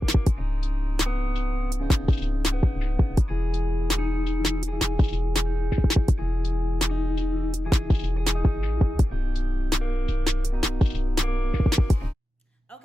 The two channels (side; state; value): both; normal; correlation 0.93